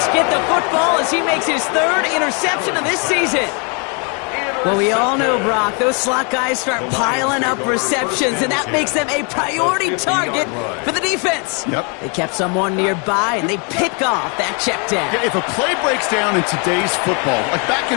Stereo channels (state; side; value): quieter; right; 35.4 dB